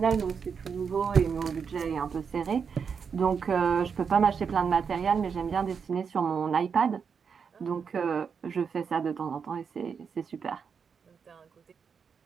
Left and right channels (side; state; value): left; quieter; 6.3 dB